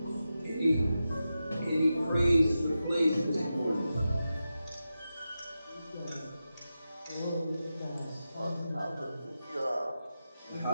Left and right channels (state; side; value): inverted; both; correlation -0.91